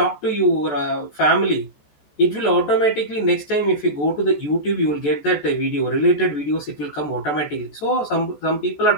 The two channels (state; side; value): late; right; 14 ms